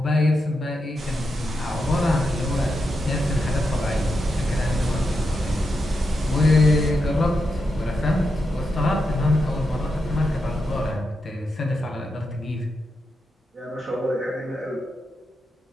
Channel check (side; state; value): both; normal; correlation 0.86